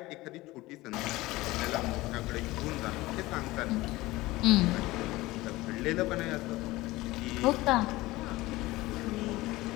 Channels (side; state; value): right; quieter; 19.3 dB